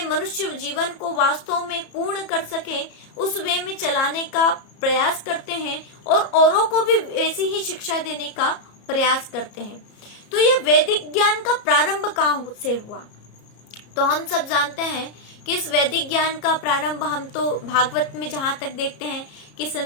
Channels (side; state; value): right; late; 33 ms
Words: मनुष्य जीवन को वास्तव में पूर्ण कर सके, उस वे में चलाने का प्रयास करते हैं और औरों को भी ऐसी ही शिक्षा देने का प्रयास करते हैं। तो ये वैदिक ज्ञान का प्रारंभ कहाँ से हुआ, तो हम सब जानते हैं कि इस वैदिक ज्ञान का प्रारंभ हम तो भागवत में जहाँ तक देखते हैं कि